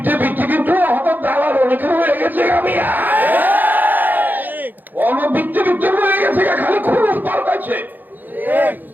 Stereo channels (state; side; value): late; left; 0.086 ms